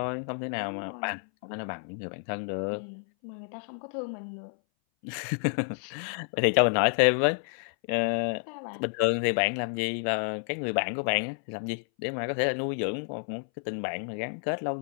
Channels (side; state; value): right; silent; 58 dB below the other